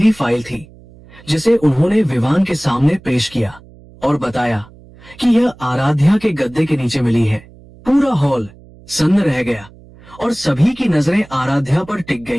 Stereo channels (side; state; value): right; noise; hum, 23 dB below the sound